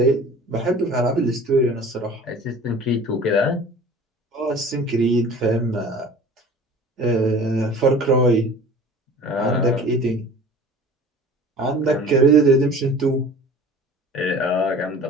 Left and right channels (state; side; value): normal; both; correlation 0.43